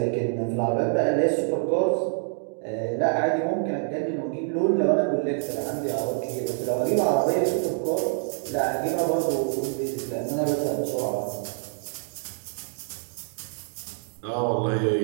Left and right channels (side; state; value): left; silent; 61 dB below the other